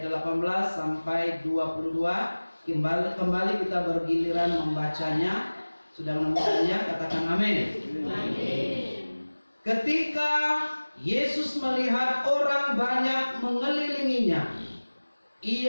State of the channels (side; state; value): both; inverted; correlation -1.00